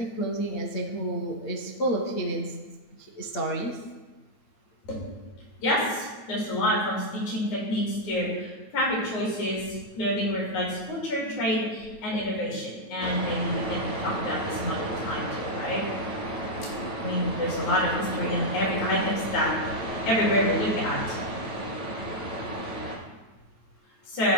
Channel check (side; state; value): right; late; 9.2 ms